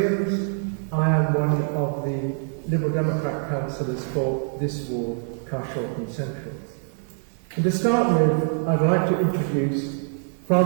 I am one of the Liberal Democrat councillors for this ward, Carshalton Central. And to start with, I'd like to introduce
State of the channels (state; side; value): silent; left; 59 dB below the other